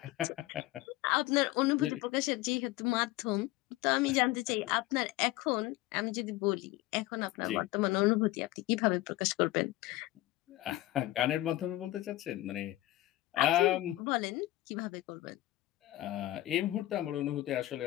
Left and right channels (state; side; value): quieter; right; 16.8 dB